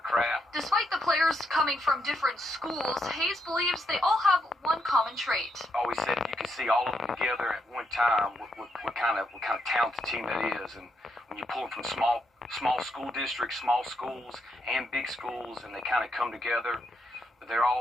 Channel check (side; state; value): both; normal; correlation 0.79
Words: craft? Despite the players coming from different schools, Hayes believes they all have one common trait. I always said if you can see all of them together at one time, what kind of talented team that is. And when you pull them from small school districts, small schools, and big schools, and they kind of come together, but they're